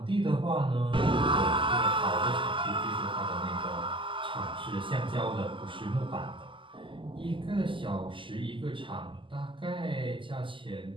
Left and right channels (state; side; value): late; left; 0.25 ms